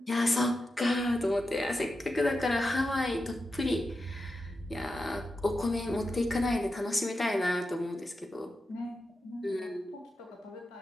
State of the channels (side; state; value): both; normal; correlation 0.90